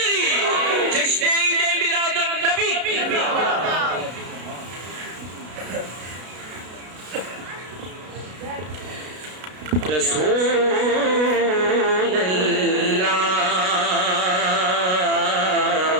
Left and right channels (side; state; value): left; late; 33 ms